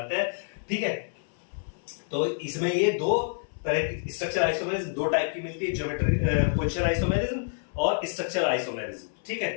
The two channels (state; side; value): silent; right; 59 dB below the other